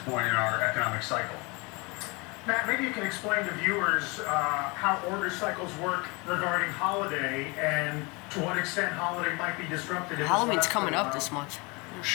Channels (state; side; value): quieter; right; 27.7 dB